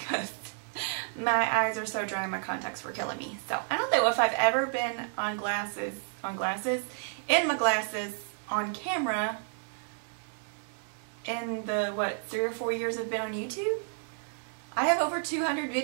my eyes are so dry and my contacts were killing me. So I don't know if I've ever been in my glasses, on camera in the, 3 or 4 years I've been on YouTube? I have over 200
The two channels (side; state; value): left; silent; 57 dB below the other